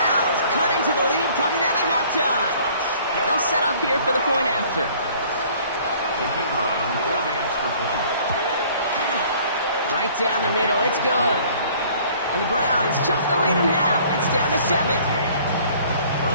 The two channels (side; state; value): both; inverted; correlation -0.54